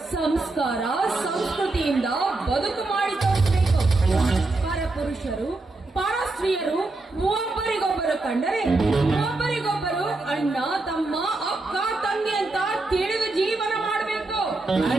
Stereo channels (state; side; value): quieter; left; 3.1 dB